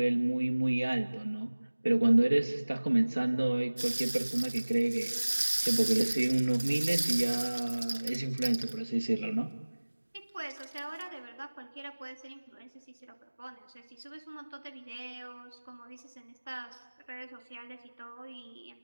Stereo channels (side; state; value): both; inverted; correlation -1.00